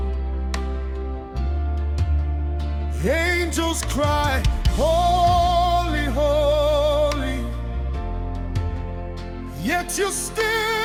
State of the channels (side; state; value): both; identical; correlation 1.00